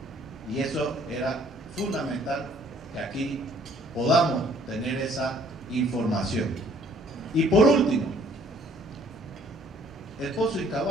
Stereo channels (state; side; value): normal; both; correlation 0.59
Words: Y eso era fundamental que aquí podamos tener esa información. Y por último, el pozo